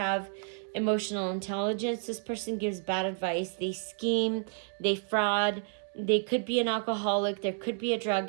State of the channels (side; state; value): left; silent; 57 dB below the other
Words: emotional intelligence. This person gives bad advice. They scheme, they fraud. They could be an alcoholic. There could be a drug